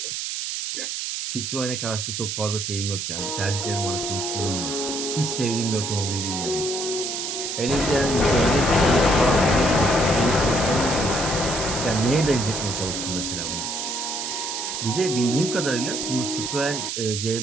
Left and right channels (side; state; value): right; noise; hiss, 3 dB below the sound